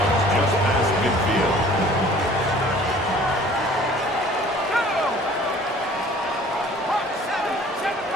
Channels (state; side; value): normal; both; correlation 0.51